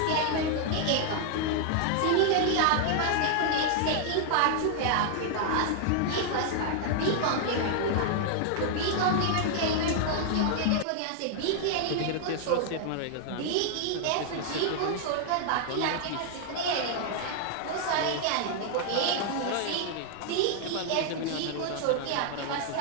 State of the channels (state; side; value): different; both; correlation 0.00